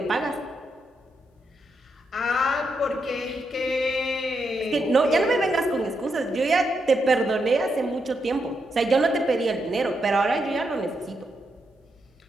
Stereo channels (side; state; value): both; normal; correlation 0.82